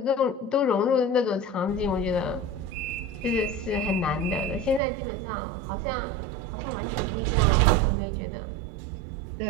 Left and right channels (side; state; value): left; drops out; at 4.8 s